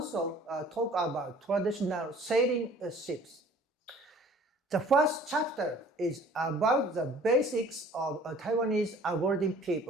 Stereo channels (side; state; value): both; normal; correlation 0.51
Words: talk about traditional sailing ships. The first chapter is about the basics of Taiwanese Aborigine